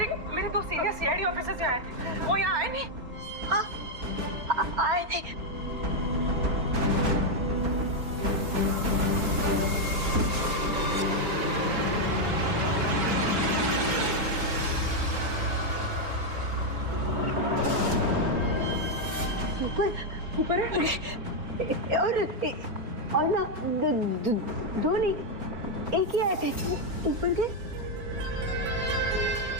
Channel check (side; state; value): left; late; 4.3 ms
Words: मेरे दो सीनियर सीआईडी ऑफिसर्स यहाँ आए थे, वो यहाँ आए नहीं? हाँ, आए थे। ऊपर है और ना दो नहीं, एक ही आए थे। ऊपर गए